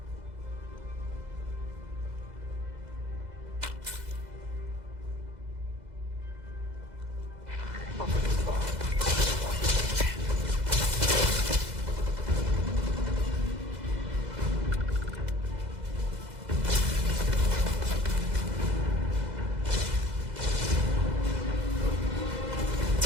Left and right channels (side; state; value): left; late; 2.0 ms